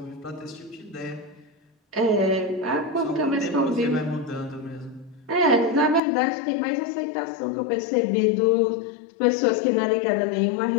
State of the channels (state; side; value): drops out; right; at 6.0 s